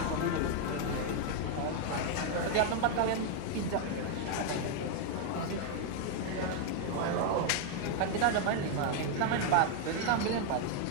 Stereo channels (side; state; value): both; different; correlation 0.00